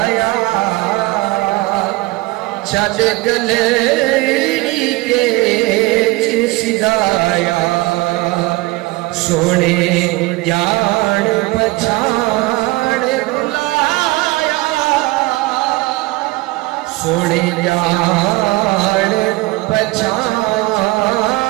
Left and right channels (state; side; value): quieter; left; 21.4 dB